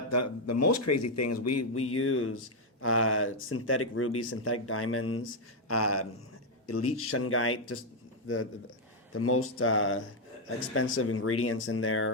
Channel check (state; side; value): normal; both; correlation 0.00